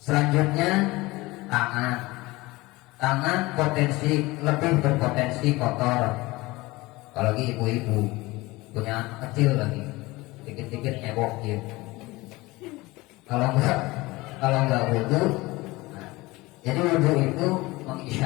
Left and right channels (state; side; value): quieter; right; 21.2 dB